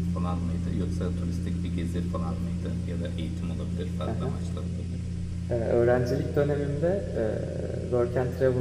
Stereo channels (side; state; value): both; identical; correlation 1.00